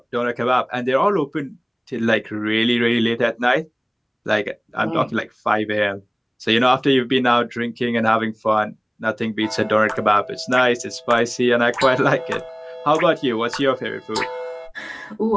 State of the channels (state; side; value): identical; both; correlation 1.00